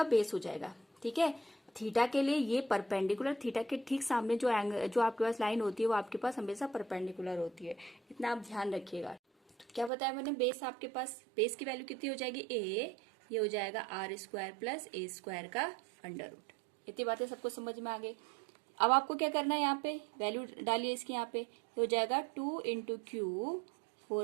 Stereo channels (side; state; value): left; drops out; at 9.9 s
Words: बेस हो जाएगा। ठीक है, थीटा के लिए ये परपेंडिकुलर, थीटा के ठीक सामने जो एंगल जो आपके पास लाइन होती है वो आपके पास हमेशा परपेंडिकुलर होती है, इतना आप ध्यान रखिएगा। तो क्या बताया मैंने, बेस आपके पास, बेस की वैल्यू कितनी हो जाएगी ए, ये हो जाएगा R square plus A square का अंडर रूट। इतनी बातें सबको समझ में आ गई। अब आपको क्या करना है, यहाँ पे वैल्यू डालिए इसकी, यहाँ पे हो जाएगा 2 into Q